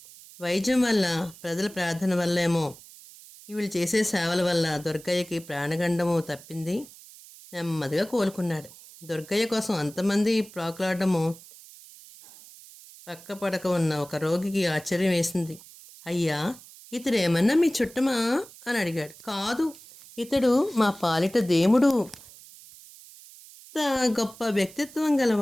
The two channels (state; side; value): noise; right; hiss, 20 dB below the sound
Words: వైద్యం వల్ల, ప్రజల ప్రార్థన వల్లేమో వీళ్ళు చేసే సేవల వల్ల దుర్గయ్యకి ప్రాణగండము తప్పింది. నెమ్మదిగా కోలుకున్నాడు. దుర్గయ్య కోసం అంతమంది ప్రాకులాడము పక్క పడక ఉన్న ఒక రోగికి ఆశ్చర్యం వేసింది. అయ్యా, ఇతడు ఏమన్నా మీ చుట్టమా అని అడిగాడు. కాదు, ఇతడు మా పాలిట దేవుడు. ఇంత గొప్ప వ్యక్తిత్వం గల